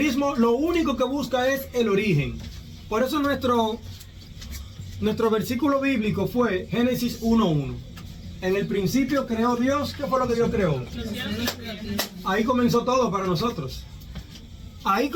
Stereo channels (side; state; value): both; identical; correlation 1.00